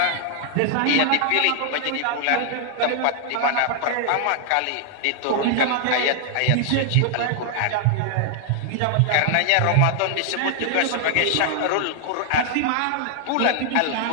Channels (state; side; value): different; both; correlation 0.00